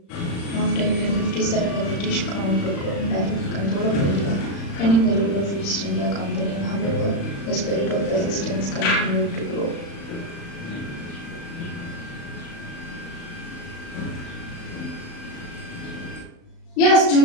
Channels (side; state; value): right; late; 35 ms